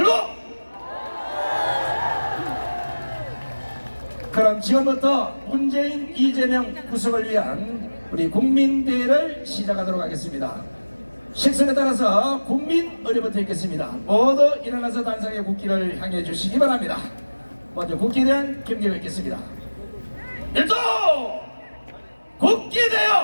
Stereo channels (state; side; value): inverted; both; correlation -1.00